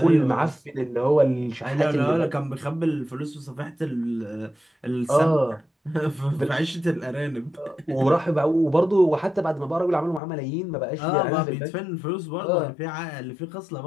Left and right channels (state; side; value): drops out; right; at 10.2 s